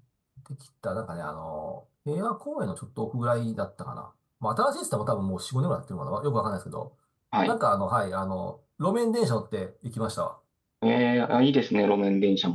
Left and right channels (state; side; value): identical; both; correlation 1.00